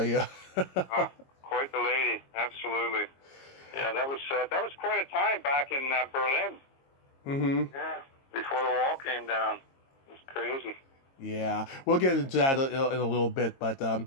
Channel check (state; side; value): late; right; 22 ms